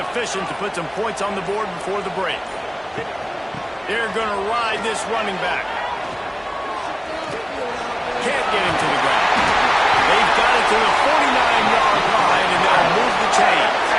to put some points on the board before the break. They're going to ride this running back. Can't get him to the ground. They've got it to the 49-yard line, and they'll move the chains.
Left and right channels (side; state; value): both; identical; correlation 1.00